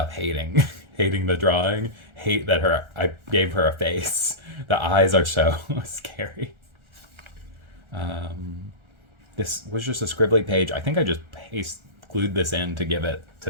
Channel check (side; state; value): left; late; 1.4 ms